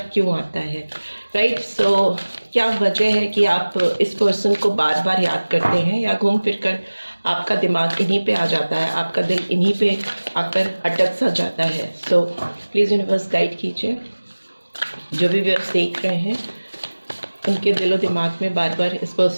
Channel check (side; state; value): both; inverted; correlation -1.00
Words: क्यों आता है। राइट, सो क्या वजह है कि आप इस पर्सन को बार बार याद करते हैं या घूम फिर कर आपका दिमाग इन्हीं पे आ जाता है, आपका दिल इन्हीं पे आकर अटक सा जाता है। सो प्लीज़ यूनिवर्स गाइड कीजिए, जो भी व्यूअर्स देख रहे हैं उनके दिलो दिमाग में बार बार इस